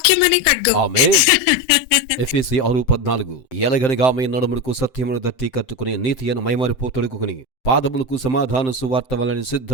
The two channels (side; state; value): right; late; 7.7 ms